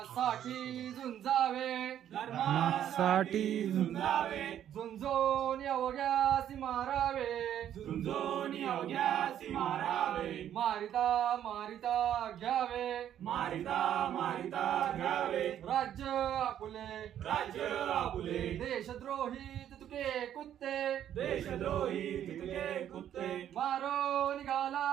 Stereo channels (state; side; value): quieter; left; 10.5 dB